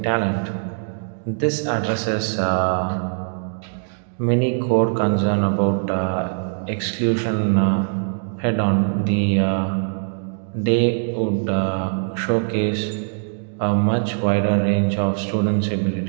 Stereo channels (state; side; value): silent; left; digital silence